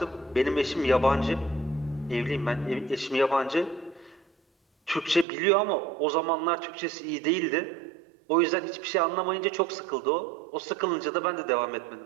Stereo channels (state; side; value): drops out; left; at 5.2 s